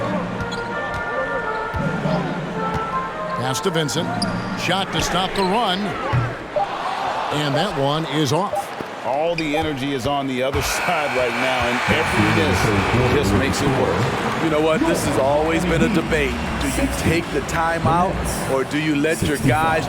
Pass to Vincent. Shot to stop the run. And that one is off. All the energy is on the other side right now, and every miss just makes it worse. You know what? This has always been a debate. Do you take the timeout, or do you let your guys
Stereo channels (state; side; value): identical; both; correlation 1.00